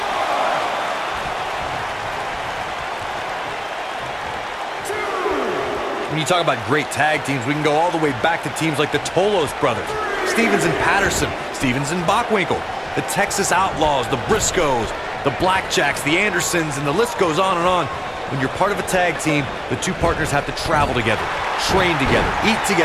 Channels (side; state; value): both; identical; correlation 1.00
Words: When you talk about great tag teams, we can go all the way back to teams like the Tolos brothers, Stevens and Patterson, Stevens and Bockwinkel, the Texas Outlaws, the Briscoes, the Blackjacks, the Andersons, and the list goes on and on. When you're part of a tag team, the two partners have to travel together, train together, eat